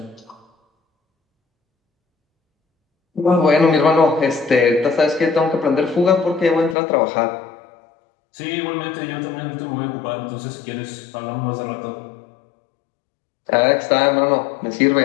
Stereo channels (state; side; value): drops out; right; at 6.8 s